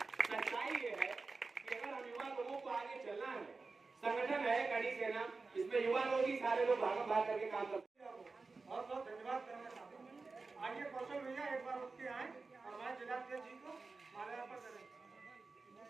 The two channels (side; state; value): left; quieter; 4.0 dB